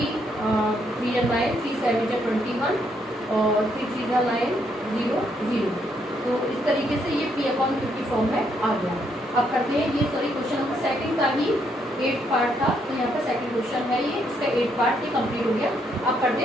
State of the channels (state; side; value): normal; both; correlation 0.74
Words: 3 9 3 7 21 और 3 3 9 0 0। तो इस तरीके से ये p/q की फॉर्म में आ गया। अब करते हैं ये सॉरी क्वेश्चन नंबर सेकंड का ही 8 पार्ट था, तो यहाँ पर सेकंड क्वेश्चन है ये, इसका 8 पार्ट ये कंप्लीट हो गया। अब करते